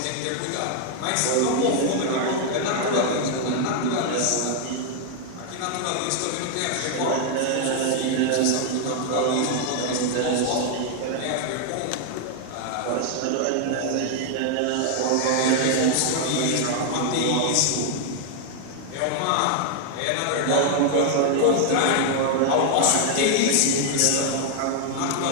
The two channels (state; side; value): different; both; correlation 0.00